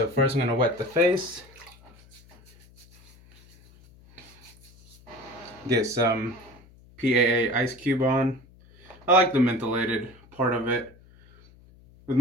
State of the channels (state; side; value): noise; left; hum, 26 dB below the sound